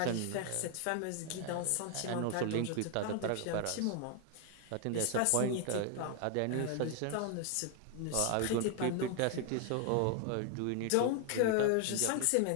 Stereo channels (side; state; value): both; different; correlation 0.00